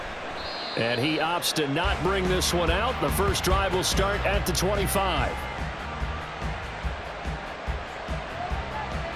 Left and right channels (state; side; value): identical; both; correlation 1.00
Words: And he opts to not bring this one out. The first drive will start at the 25.